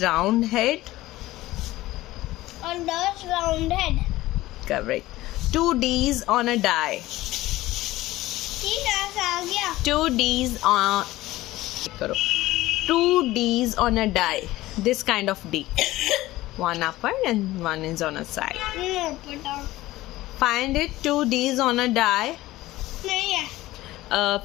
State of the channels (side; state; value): right; quieter; 17.2 dB